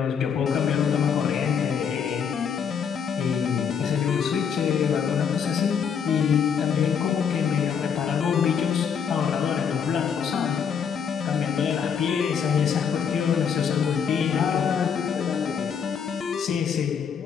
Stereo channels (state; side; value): quieter; right; 7.1 dB